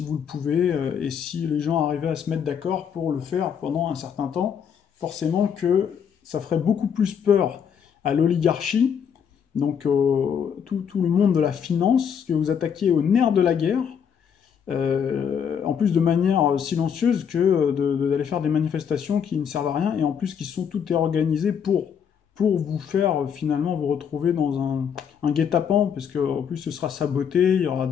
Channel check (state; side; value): quieter; right; 7.6 dB